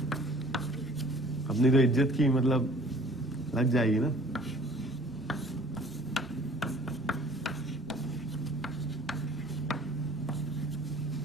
अपनी तो इज्जत की मतलब लग जाएगी ना।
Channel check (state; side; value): normal; both; correlation 0.52